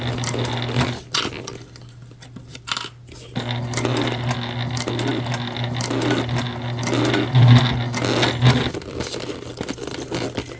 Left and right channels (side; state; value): both; identical; correlation 1.00